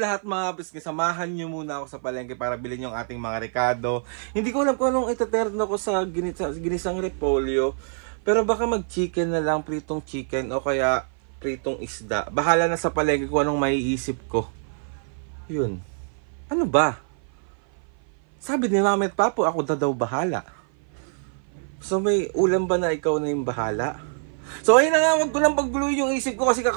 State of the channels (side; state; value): left; silent; 56 dB below the other